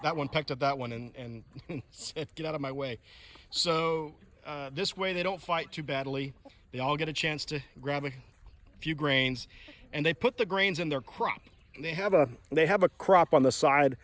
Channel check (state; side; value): identical; both; correlation 1.00